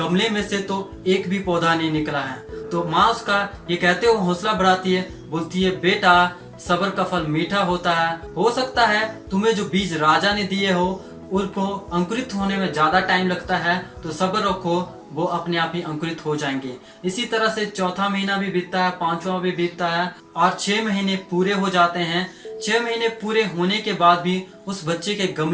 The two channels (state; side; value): identical; both; correlation 1.00